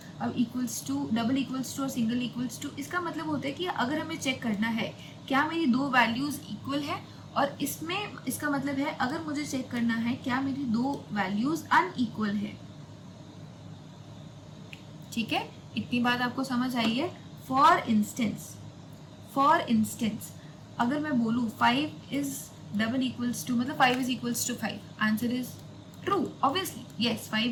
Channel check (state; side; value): identical; both; correlation 1.00